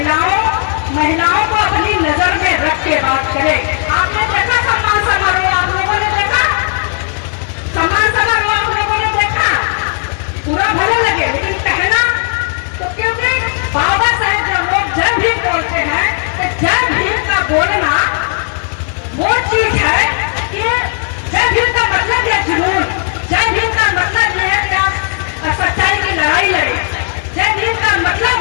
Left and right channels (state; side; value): silent; right; 57 dB below the other